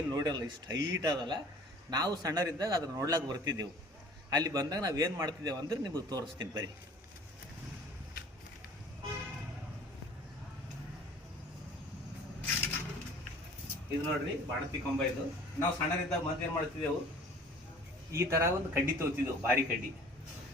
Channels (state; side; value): normal; both; correlation 0.48